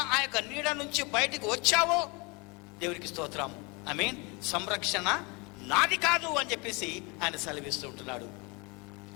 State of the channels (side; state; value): right; quieter; 28.6 dB